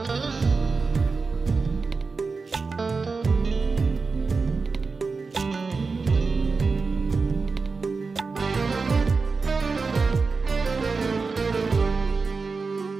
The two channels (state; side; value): quieter; left; 4.4 dB